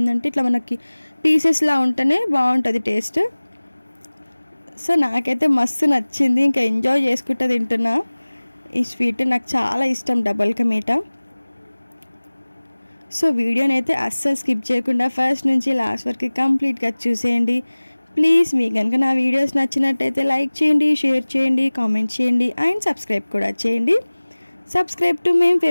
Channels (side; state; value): both; inverted; correlation -1.00